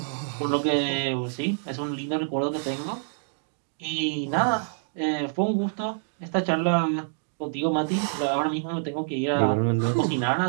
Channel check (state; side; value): silent; left; digital silence